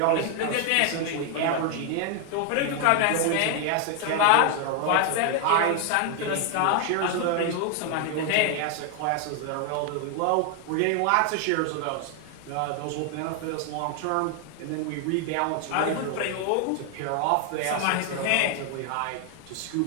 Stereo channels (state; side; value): different; both; correlation 0.00